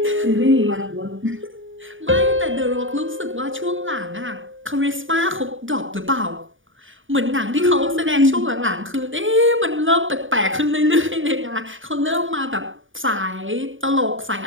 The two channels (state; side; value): late; left; 0.57 ms